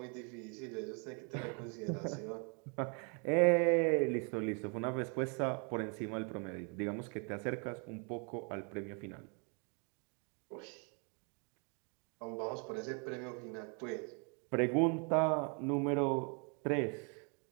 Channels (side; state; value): left; quieter; 36.5 dB